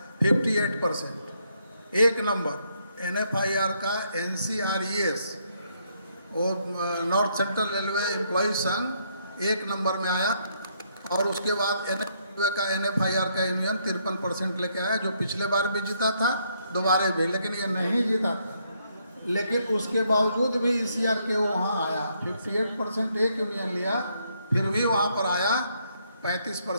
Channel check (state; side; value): inverted; both; correlation -0.73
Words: 58%। एक नंबर NFIR का NCRES, वो नॉर्थ सेंट्रल रेलवे एम्प्लॉय संघ, एक नंबर में आया। और उसके बाद NFIR का यूनियन 53% लेके आया, जो पिछले बार भी जीता था, दोबारा भी, लेकिन ये नहीं जीता था। लेकिन उसके बावजूद भी ECR के वहाँ आया, 58% एक यूनियन लिया, फिर भी वहाँ पर आया